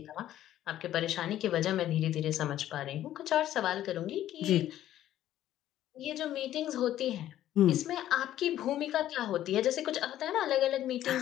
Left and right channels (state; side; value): quieter; right; 12.6 dB